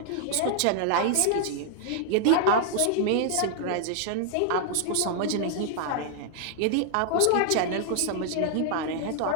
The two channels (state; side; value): different; both; correlation -0.01